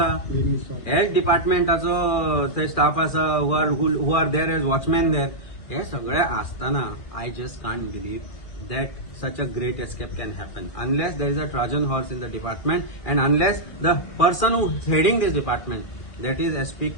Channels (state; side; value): late; right; 2.5 ms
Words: हेल्थ डिपार्टमेंटाचो थंय स्टाफ आसा who are there as watchman there हे सगळे आसतना I just can't believe that such a great escape can happen unless there is a Trojan horse in the department and unless the person who is heading this department, that is SP